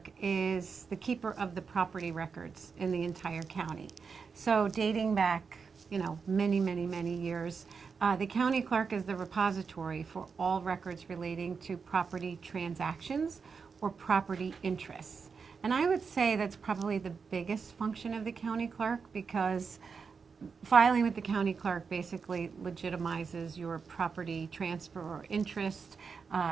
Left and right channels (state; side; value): quieter; left; 5.5 dB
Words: is the keeper of the property records in the entire county. So dating back, many years, the county clerk is the repository for all records relating to property transactions or property interests. And I would say that's probably the biggest function of the county clerk, because filing with the county clerk basically legitimizes your property transfer or interest.